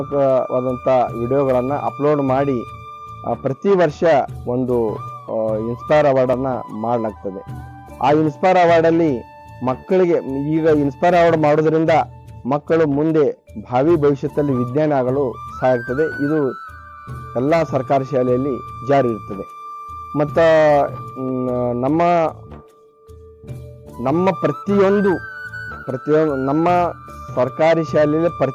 ವಿಡಿಯೋಗಳನ್ನು ಅಪ್ಲೋಡ್ ಮಾಡಿ ಪ್ರತಿ ವರ್ಷ ಒಂದು ಇನ್ಸ್ಪೈರ್ ಅವಾರ್ಡನ್ನು ಮಾಡಲಾಗ್ತದೆ. ಆ ಇನ್ಸ್ಪೈರ್ ಅವಾರ್ಡಲ್ಲಿ ಮಕ್ಕಳಿಗೆ ಈಗ ಇನ್ಸ್ಪೈರ್ ಅವಾರ್ಡ್ ಮಾಡೋದ್ರಿಂದ ಮಕ್ಕಳು ಮುಂದೆ ಭಾವಿ ಭವಿಷ್ಯದಲ್ಲಿ ವಿಜ್ಞಾನಿ ಆಗಲು ಸಹಾಯ ಆಗ್ತದೆ. ಇದು ಎಲ್ಲ ಸರ್ಕಾರಿ ಶಾಲೆಯಲ್ಲಿ ಜಾರಿ ಇರ್ತದೆ. ಮತ್ತು ನಮ್ಮ ಪ್ರತಿಯೊಂದು ನಮ್ಮ ಸರ್ಕಾರಿ ಶಾಲೆಯಲ್ಲಿ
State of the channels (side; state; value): both; identical; correlation 1.00